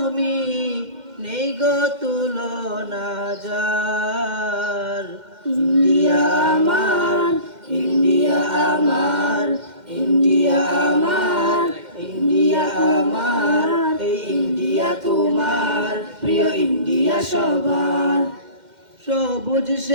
নেই গো তুলনা যার। ইন্ডিয়া আমার, ইন্ডিয়া আমার, ইন্ডিয়া আমার, ইন্ডিয়া আমার, এই ইন্ডিয়া তোমার, প্রিয় ইন্ডিয়া সবার। সবুজ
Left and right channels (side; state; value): left; late; 2.1 ms